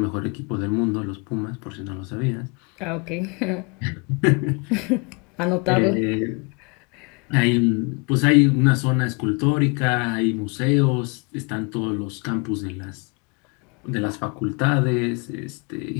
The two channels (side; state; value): right; quieter; 31.9 dB